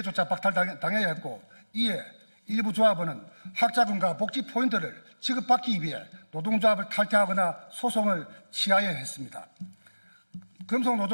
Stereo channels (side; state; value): both; inverted; correlation -1.00